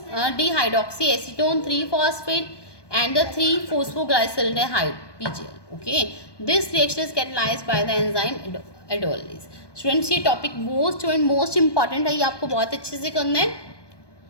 3-phosphate and the 3-phosphoglyceraldehyde PGL. Okay, this reaction is catalyzed by the enzyme aldolase. Students ये topic most important है, ये आपको बहुत अच्छे से करना है.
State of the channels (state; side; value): late; right; 1.2 ms